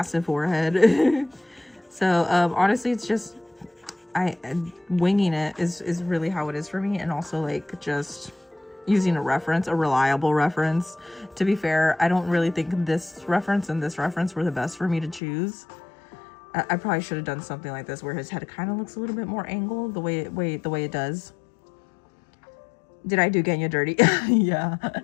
forehead. So honestly, it's just winging it is really how it is for me, and also like just using a reliable reference. To be fair, I don't really think this reference and this reference were the best for me to choose. I probably should have done something like this where his head kind of looks a little bit more angled the way it does. Did I do Genya dirty? Yeah.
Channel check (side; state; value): right; drops out; at 15.2 s